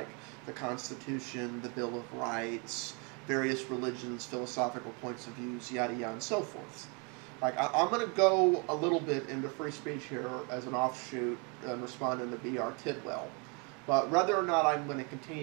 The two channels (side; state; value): left; quieter; 32.9 dB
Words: the Constitution, the Bill of Rights, various religions, philosophical points of views, yada yada, and so forth? I'm going to go a little bit into free speech here as an offshoot and responding to B.R. Tidwell. But whether or not I'm going to